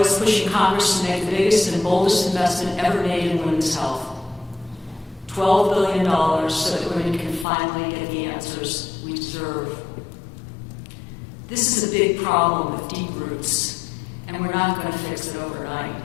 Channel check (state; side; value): drops out; right; at 7.5 s